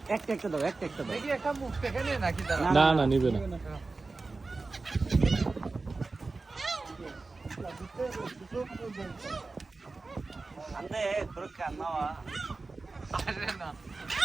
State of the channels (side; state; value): left; quieter; 3.7 dB